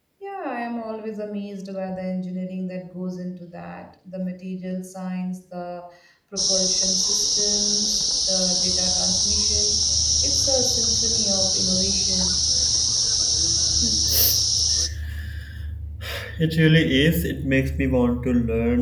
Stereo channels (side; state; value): both; identical; correlation 1.00